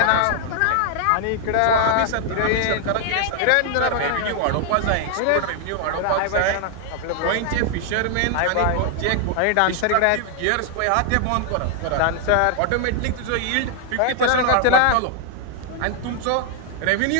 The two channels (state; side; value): different; both; correlation 0.00